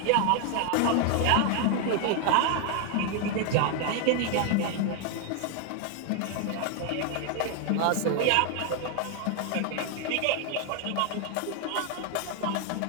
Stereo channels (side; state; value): both; different; correlation 0.01